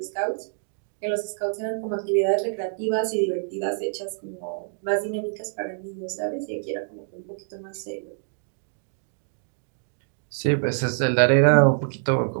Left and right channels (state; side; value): silent; left; digital silence